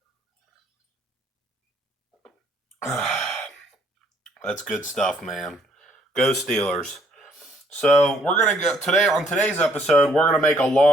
That's good stuff, man. Go Steelers. So we're gonna go today on today's episode. We're gonna make a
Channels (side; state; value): both; normal; correlation 0.65